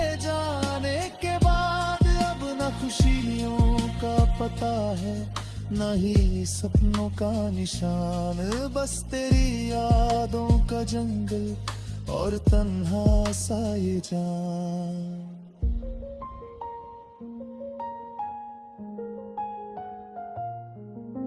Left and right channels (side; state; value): both; identical; correlation 1.00